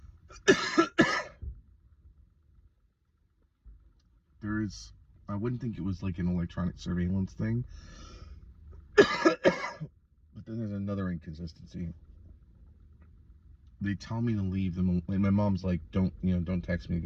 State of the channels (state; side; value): identical; both; correlation 1.00